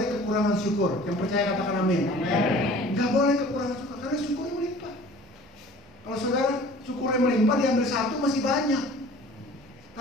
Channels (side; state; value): both; normal; correlation 0.47